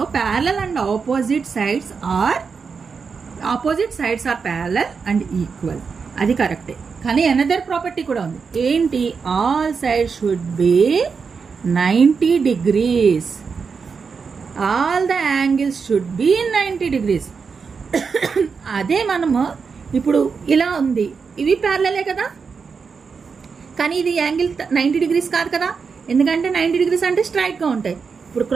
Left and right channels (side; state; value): left; quieter; 5.5 dB